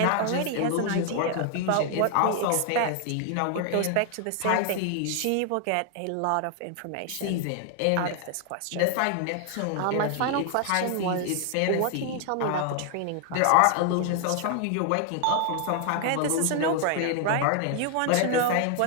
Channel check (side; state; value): both; different; correlation 0.00